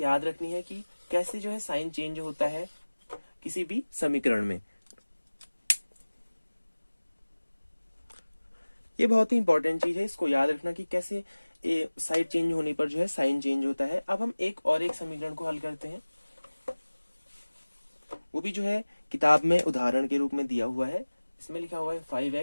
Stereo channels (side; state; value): both; inverted; correlation -1.00